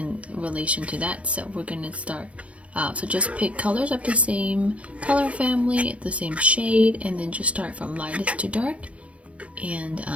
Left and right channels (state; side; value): late; left; 0.063 ms